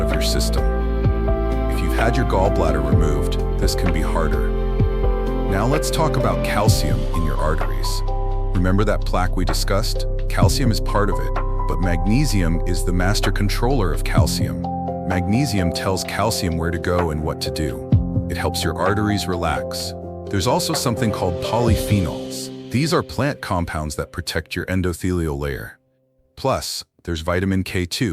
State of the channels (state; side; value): identical; both; correlation 1.00